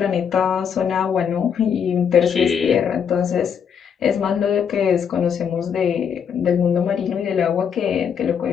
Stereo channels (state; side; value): quieter; right; 7.5 dB